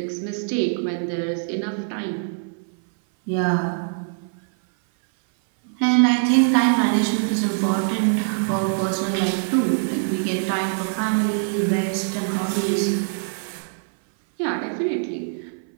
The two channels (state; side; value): silent; left; 59 dB below the other